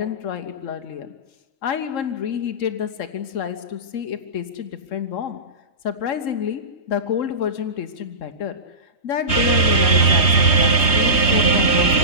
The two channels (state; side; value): late; right; 3.2 ms